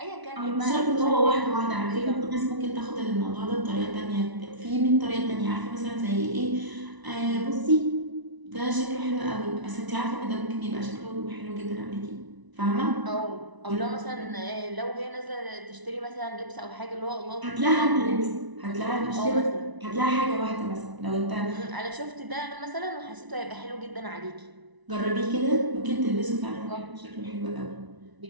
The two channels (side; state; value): left; late; 1.0 ms